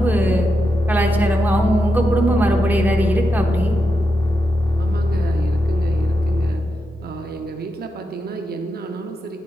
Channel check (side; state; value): both; normal; correlation 0.86